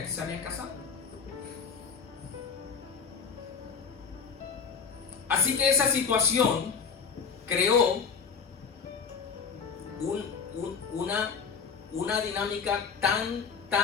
que se habían casado. Así que esa situación creó una dinámica tan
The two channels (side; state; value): right; quieter; 6.0 dB